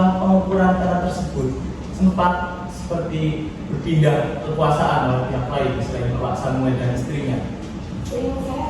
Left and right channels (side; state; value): both; identical; correlation 1.00